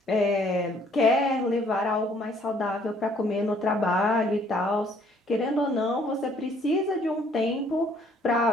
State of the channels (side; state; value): both; normal; correlation 0.61